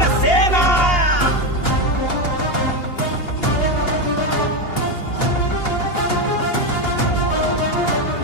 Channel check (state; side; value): late; right; 2.9 ms